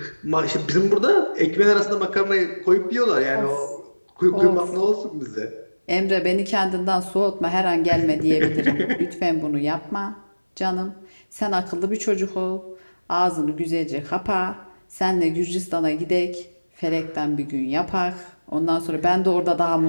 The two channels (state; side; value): inverted; both; correlation -1.00